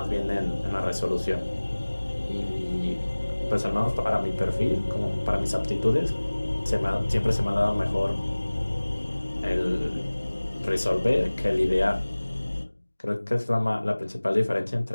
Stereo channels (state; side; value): inverted; both; correlation -1.00